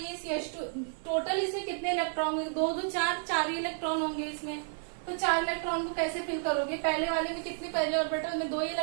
CH2, टोटल इसमें कितने इलेक्ट्रॉन होंगे, 2 2 4 ही इलेक्ट्रॉन होंगे इसमें। तो 4 इलेक्ट्रॉन को कैसे फिल करोगे, पहले वाले में कितने, पहले ऑर्बिटल में 2 ही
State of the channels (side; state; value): left; silent; digital silence